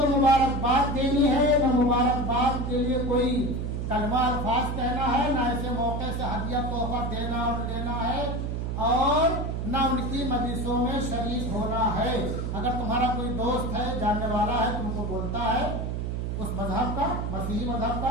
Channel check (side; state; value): right; noise; hum, 2 dB below the sound